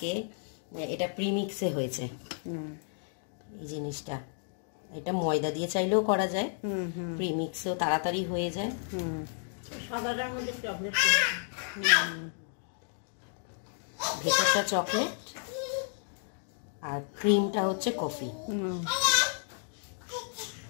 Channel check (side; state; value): right; silent; digital silence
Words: এটা প্রিমিক্সে হয়েছে এই জিনিসটা। এটা ময়দা দিয়ে চাইলেও করা যায়, প্রিমিক্সেও তাড়াতাড়ি হয়ে যায়। সাদাটার মধ্যে চকলেট, ভেতরটা চকলেট আর ক্রিমটা হচ্ছে কফি।